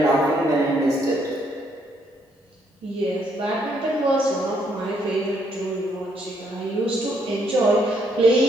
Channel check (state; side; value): normal; both; correlation 0.71